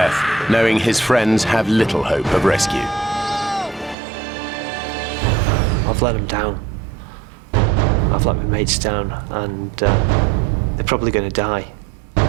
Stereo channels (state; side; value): drops out; left; at 4.0 s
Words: knowing his friends have little hope of rescue. I've let them down. I've let my mates down, and they're probably going to die.